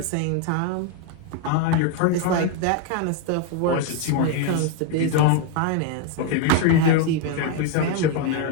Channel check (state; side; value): different; both; correlation 0.01